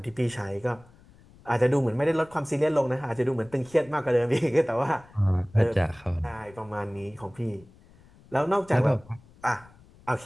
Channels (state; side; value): noise; left; rumble, 26 dB below the sound